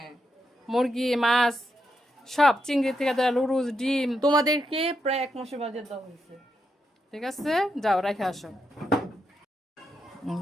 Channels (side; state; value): both; normal; correlation 0.83